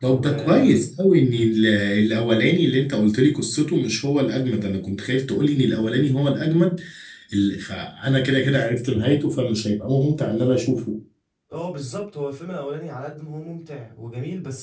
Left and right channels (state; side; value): identical; both; correlation 1.00